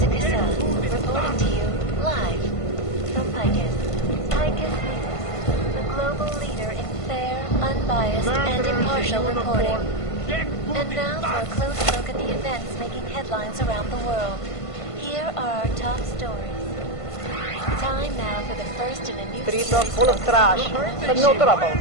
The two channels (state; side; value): late; right; 1.5 ms